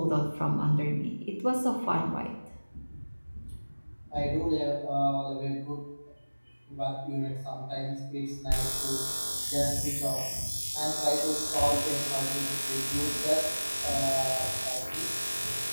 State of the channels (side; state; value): both; inverted; correlation -1.00